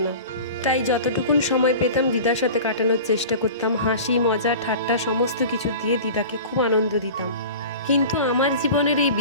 না, তাই যতটুকুন সময় পেতাম দিদার সাথে কাটানোর চেষ্টা করতাম। হাসি, মজা, ঠাট্টা সমস্ত কিছু দিয়ে দিদাকে খুব আনন্দ দিতাম। কিন্তু আমার জীবনের এই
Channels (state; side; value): inverted; both; correlation -0.37